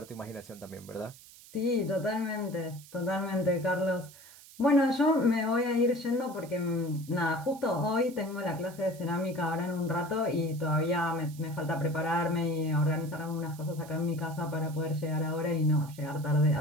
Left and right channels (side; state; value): right; noise; hiss, 20 dB below the sound